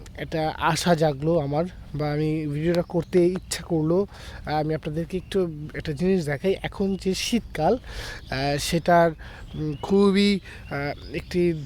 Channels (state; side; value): identical; both; correlation 1.00